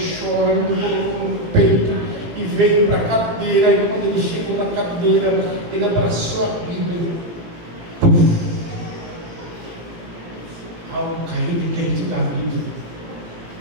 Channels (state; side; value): late; left; 18 ms